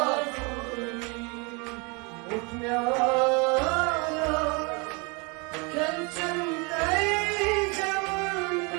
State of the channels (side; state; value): left; quieter; 30.4 dB